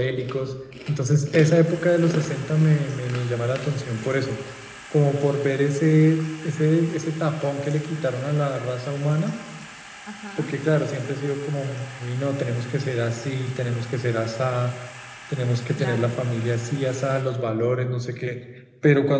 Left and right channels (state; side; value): identical; both; correlation 1.00